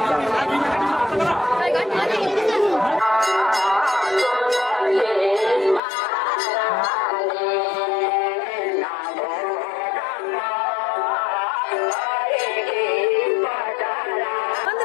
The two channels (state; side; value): drops out; right; at 5.8 s